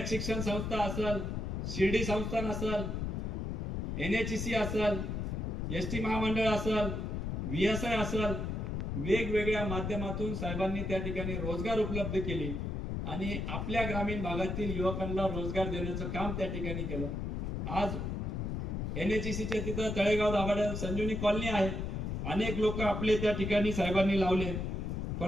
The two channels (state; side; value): noise; left; rumble, 2 dB below the sound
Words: शिक्षण संस्था असेल शिर्डी संस्थान असेल NHEC असेल ST महामंडळ असेल VSI असेल वेगवेगळ्या माध्यमातून साहेबांनी त्या ठिकाणी रोजगार उपलब्ध केले आणि आपल्या ग्रामीण भागातील युवकांना रोजगार देण्याचं काम त्या ठिकाणी केलं. आज NHECच्या तिथं तळेगाव दाभाड्यात संजीवनी कॉलनी आहे. अनेक लोक आपले त्या ठिकाणी साहेबांनी लावले.